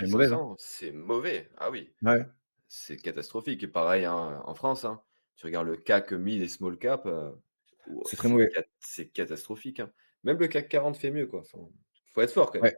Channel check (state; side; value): inverted; both; correlation -1.00